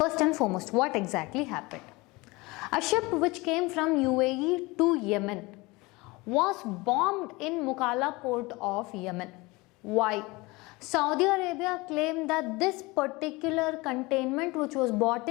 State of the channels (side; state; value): right; quieter; 23.5 dB